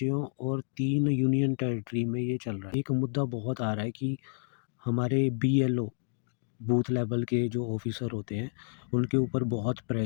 और 3 यूनियन टेरिटरी में ये चल रहा है। एक मुद्दा बहुत आ रहा है कि हमारे बीएलओ बूथ लेवल के जो ऑफिसर होते हैं उनके ऊपर बहुत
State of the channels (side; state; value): right; silent; digital silence